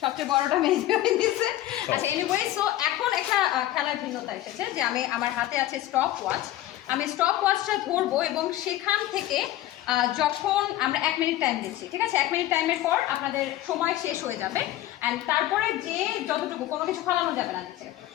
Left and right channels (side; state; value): right; quieter; 14.5 dB